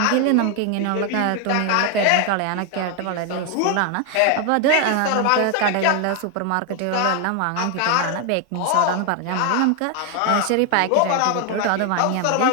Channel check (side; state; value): both; different; correlation 0.00